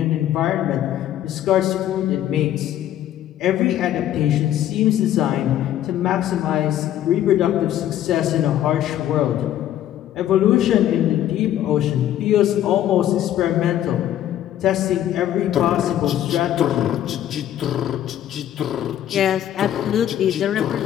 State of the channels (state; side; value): quieter; right; 11.8 dB